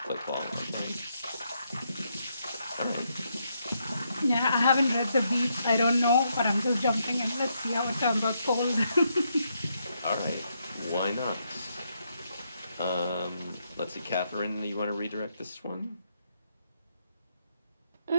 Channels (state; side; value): inverted; both; correlation -0.78